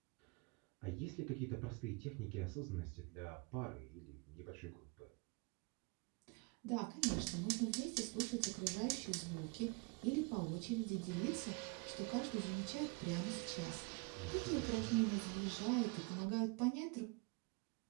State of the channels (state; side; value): quieter; left; 30.1 dB